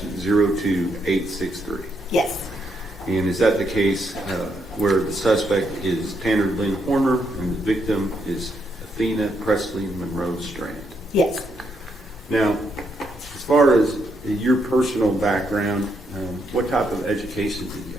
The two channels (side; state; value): both; normal; correlation 0.78